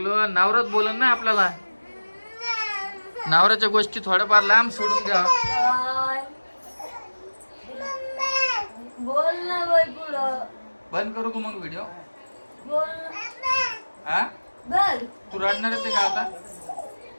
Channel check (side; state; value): both; inverted; correlation -1.00